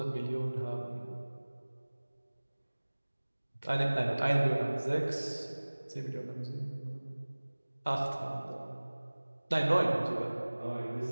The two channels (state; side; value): inverted; both; correlation -1.00